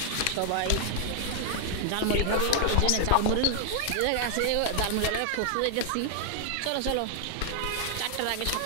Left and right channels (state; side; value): different; both; correlation 0.00